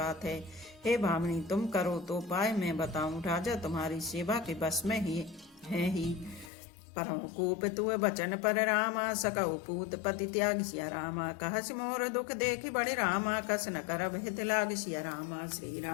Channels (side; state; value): right; drops out; at 6.5 s